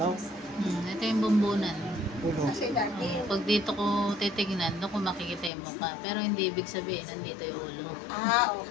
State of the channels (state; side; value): drops out; right; at 5.5 s